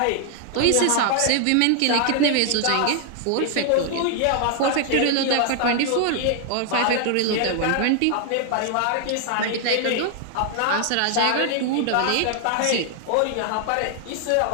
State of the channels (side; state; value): both; different; correlation 0.00